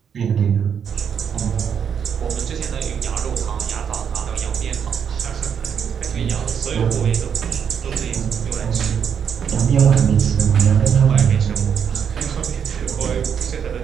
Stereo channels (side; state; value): left; quieter; 7.6 dB